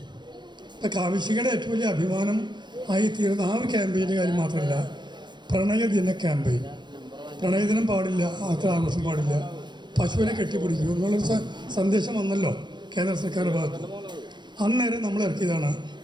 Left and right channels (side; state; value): left; late; 0.22 ms